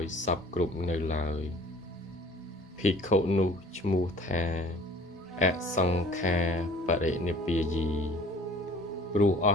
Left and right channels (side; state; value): both; normal; correlation 0.50